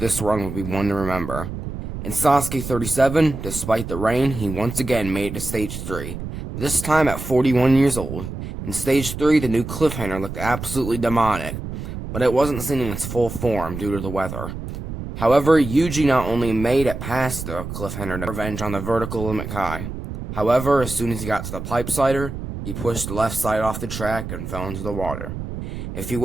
run would be one to remember. In Sasuke 37, despite the rain, he once again made it to Stage 3, this time at 41 years old. In Stage 3, the new cliffhanger looked absolutely demonic, but it wasn't seen in its full form due to the weather. However, Yuji not only made it past the cliffhanger to revenge on the vertical limit Kai. However, as soon as he got to the pipe slider, he pushed the left side off the track and fell into the water. If he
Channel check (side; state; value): right; noise; rumble, 8 dB below the sound